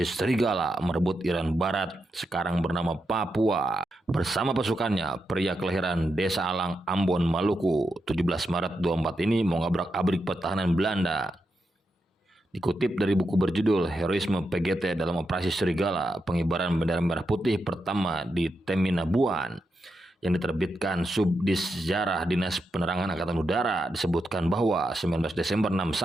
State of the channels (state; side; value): normal; both; correlation 0.85